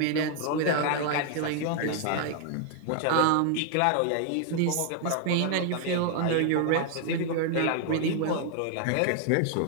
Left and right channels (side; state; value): both; different; correlation 0.00